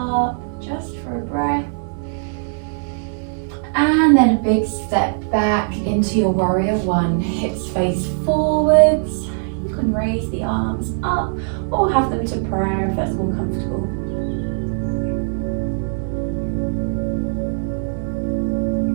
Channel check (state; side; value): silent; left; digital silence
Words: just for a breath. And then a big step back into your warrior one. Hips face forwards. You can raise the arms up or have them to prayer if that's more comfortable.